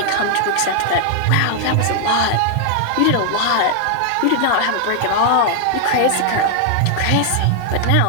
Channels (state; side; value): different; both; correlation 0.00